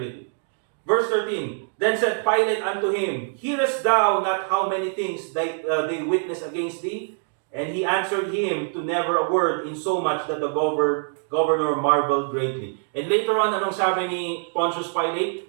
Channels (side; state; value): left; silent; 59 dB below the other